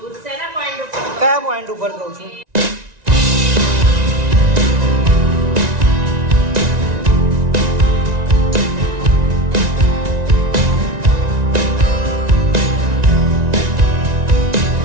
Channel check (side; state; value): left; late; 1.9 ms